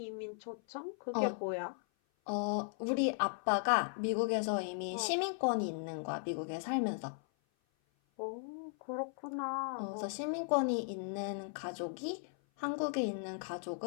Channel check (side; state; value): right; silent; 53 dB below the other